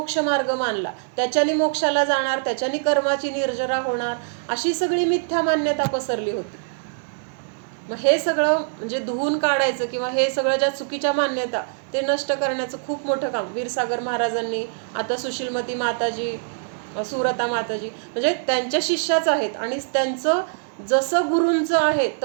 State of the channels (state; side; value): silent; left; digital silence